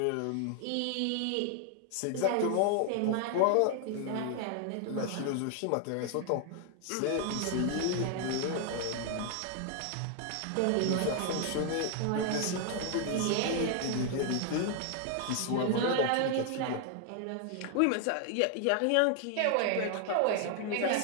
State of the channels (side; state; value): both; different; correlation 0.00